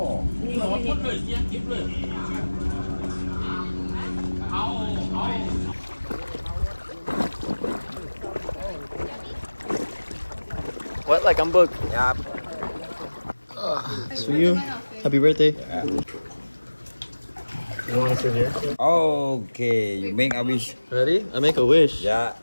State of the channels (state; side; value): inverted; both; correlation -1.00